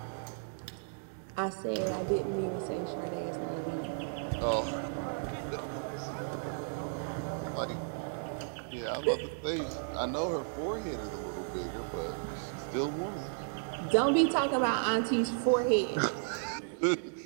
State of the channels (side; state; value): left; silent; digital silence